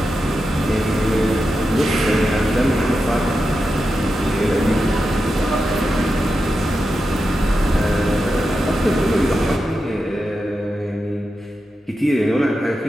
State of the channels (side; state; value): both; normal; correlation 0.89